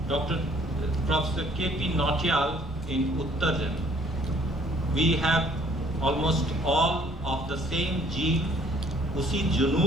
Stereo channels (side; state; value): both; normal; correlation 0.60